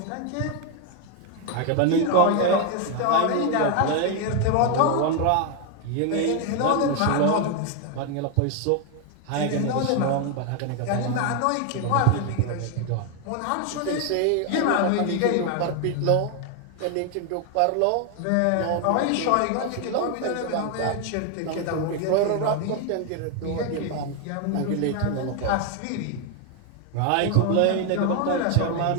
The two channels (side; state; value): both; different; correlation 0.01